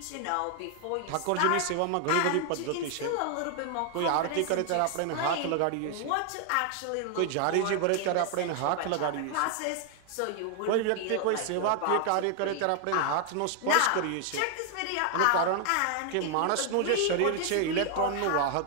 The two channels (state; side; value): different; both; correlation 0.00